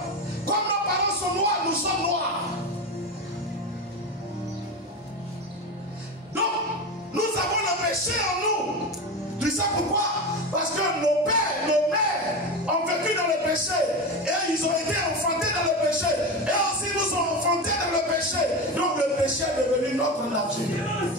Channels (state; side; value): normal; both; correlation 0.22